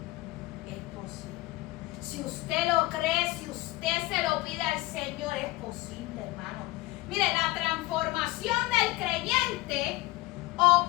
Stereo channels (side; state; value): right; quieter; 19.9 dB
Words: Es posible. Si usted lo cree, si usted se lo pide al Señor, es posible, hermano. Mire, la transformación del creyente